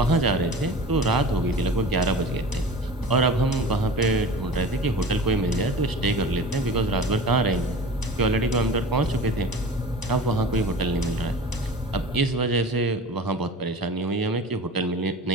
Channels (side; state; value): both; normal; correlation 0.37